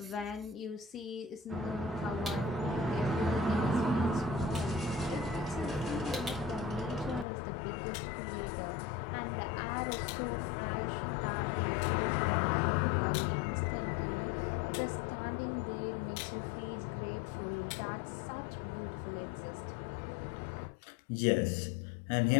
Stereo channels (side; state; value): right; drops out; at 7.2 s